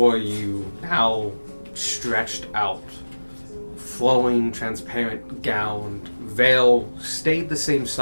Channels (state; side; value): inverted; both; correlation -1.00